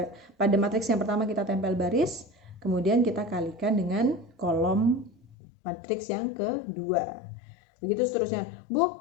Pada matriks yang pertama kita tempel baris, kemudian kita kalikan dengan kolom matriks yang kedua. Begitu seterusnya. Bu,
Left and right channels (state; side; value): drops out; right; at 5.4 s